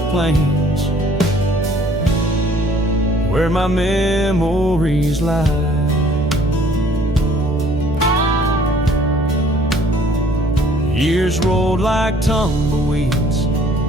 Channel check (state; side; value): noise; right; hum, 11 dB below the sound